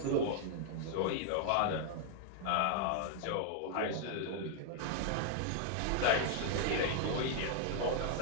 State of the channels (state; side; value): different; both; correlation 0.00